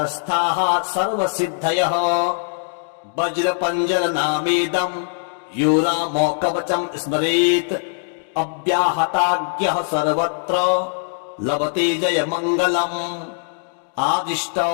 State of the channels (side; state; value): right; silent; digital silence